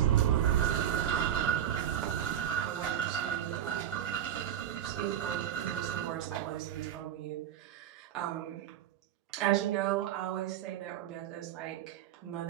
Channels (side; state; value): left; quieter; 10.6 dB